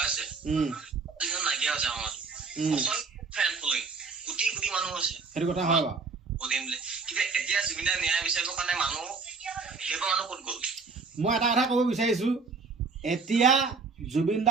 যিদিনা নাইকিয়া হৈছে আমাৰ ফেন ফলোয়িং কোটি কোটি মানুহ আছে সেইটো কথা হয় বাৰু কিন্তু এতিয়া জুবিন দাক ন্যায় বিচাৰিবৰ কাৰণে মানুহ সেইবোৰ মানুহ ক'ত গ'ল মই এটা কথা ক'ব বিচাৰিছো এতিয়া জুবিন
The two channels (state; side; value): quieter; left; 4.5 dB